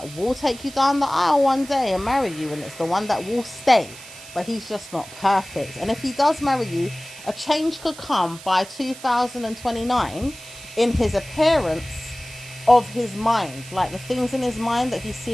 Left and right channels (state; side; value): noise; right; hiss, 16 dB below the sound